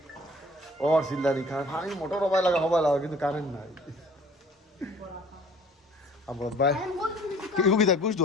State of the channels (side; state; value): both; normal; correlation 0.52